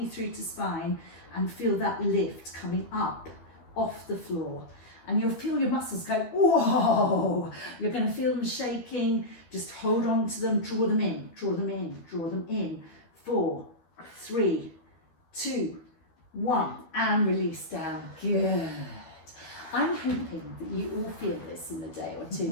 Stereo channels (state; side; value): late; right; 12 ms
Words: through to spine and feel that lift coming up off the floor. And you'll feel your muscles go, whoa! You're going to feel them shaking. Just hold on to them, draw them in, draw them in, draw them in. 4, 3, 2, 1, and release down. Good. I'm hoping that you all feel this in a day or two,